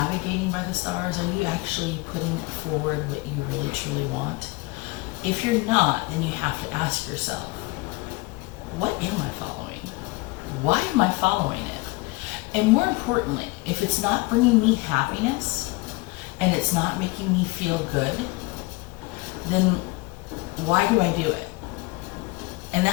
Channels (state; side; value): quieter; right; 24.0 dB